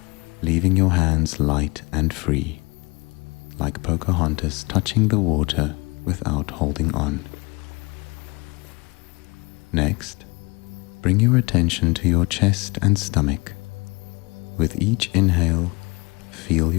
leaving your hands light and free, like Pocahontas touching the water without holding on. Next, bring your attention to your chest and stomach. With each inhale, feel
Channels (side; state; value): right; quieter; 25.8 dB